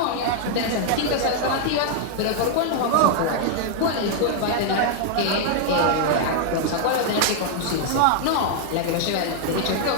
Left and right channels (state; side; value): different; both; correlation 0.00